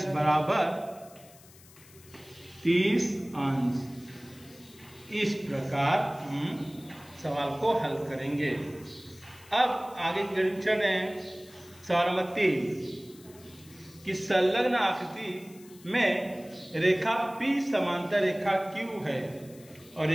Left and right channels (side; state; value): left; noise; hiss, 23 dB below the sound